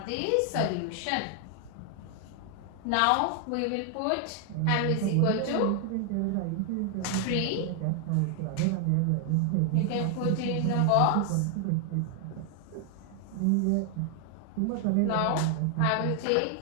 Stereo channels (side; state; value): both; different; correlation 0.00